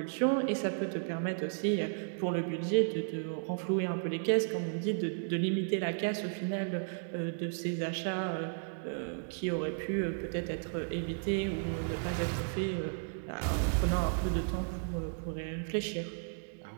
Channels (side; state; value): left; silent; digital silence